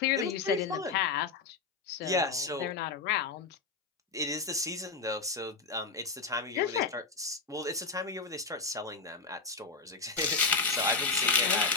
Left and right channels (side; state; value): right; quieter; 4.3 dB